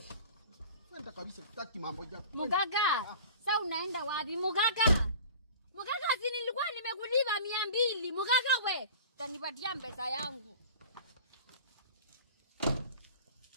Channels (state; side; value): inverted; both; correlation -0.40